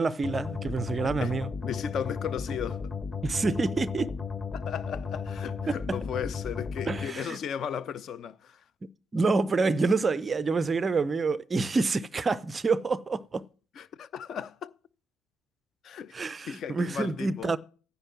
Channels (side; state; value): both; normal; correlation 0.83